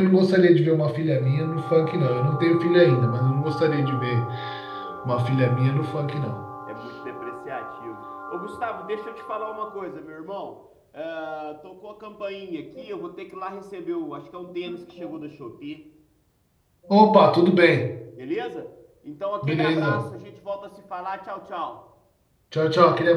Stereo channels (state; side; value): identical; both; correlation 1.00